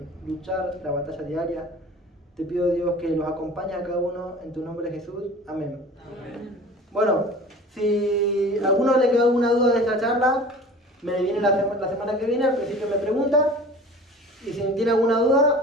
luchar la batalla diaria. Te pido, Dios, que los acompañe a cada uno en tu nombre, Jesús. Amén. Amén. Bueno, si a alguno le quedó alguna duda de esta charla, me viene la semana que viene, al principio me pregunta. Y si tiene alguna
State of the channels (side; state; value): both; normal; correlation 0.41